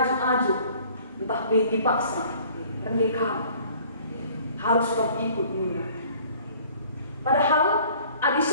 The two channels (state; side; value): inverted; both; correlation -0.53